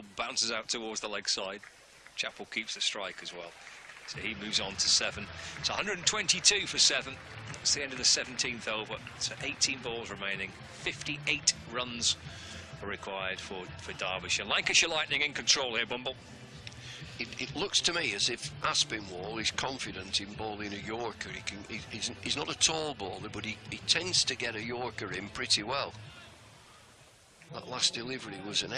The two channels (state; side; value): identical; both; correlation 1.00